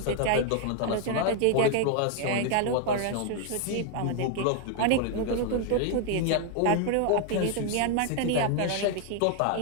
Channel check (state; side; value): different; both; correlation 0.00